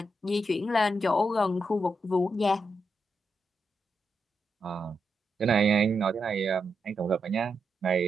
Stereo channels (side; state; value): both; normal; correlation 0.84